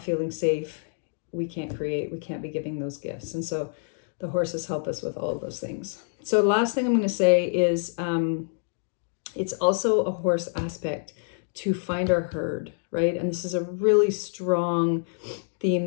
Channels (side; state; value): right; silent; digital silence